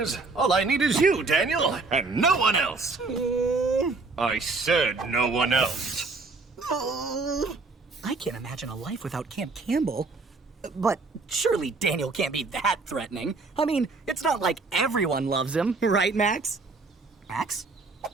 All I need is you, Daniel, and no one else. I said no one else. I can't imagine a life without Camp Campbell. But surely Daniel can't be that threatening. I mean, it's not like everyone loves him, right, Max? Max?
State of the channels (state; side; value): quieter; left; 3.9 dB